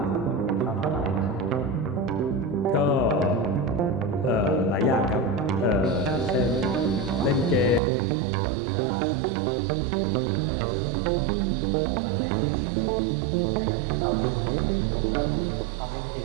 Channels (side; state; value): left; drops out; at 7.8 s